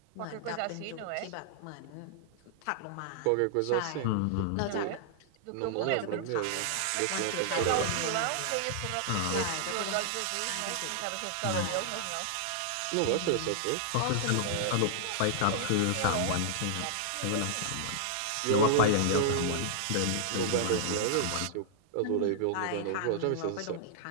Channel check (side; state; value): both; different; correlation -0.01